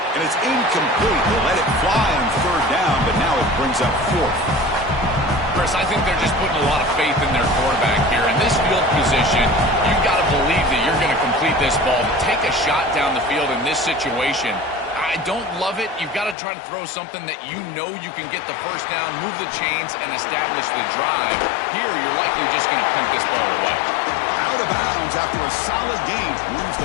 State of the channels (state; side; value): drops out; right; at 16.4 s